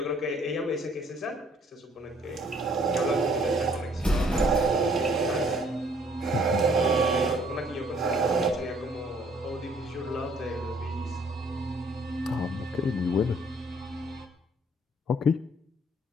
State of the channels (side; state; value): both; normal; correlation 0.61